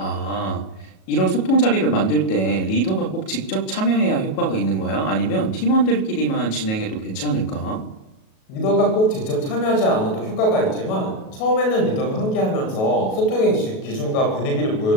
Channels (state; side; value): late; right; 37 ms